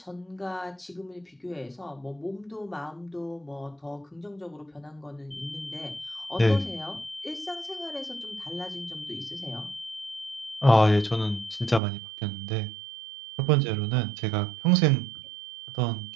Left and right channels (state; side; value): drops out; left; at 11.8 s